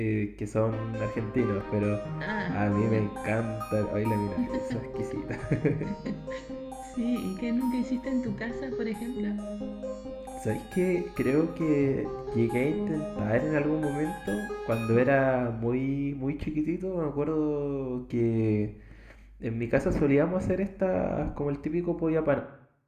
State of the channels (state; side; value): identical; both; correlation 1.00